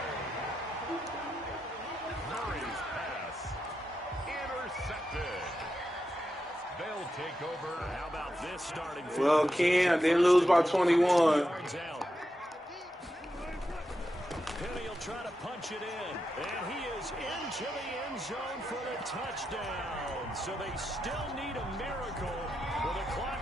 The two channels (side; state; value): both; normal; correlation 0.87